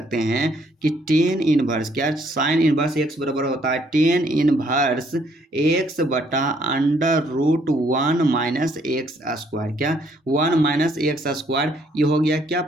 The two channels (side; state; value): both; normal; correlation 0.67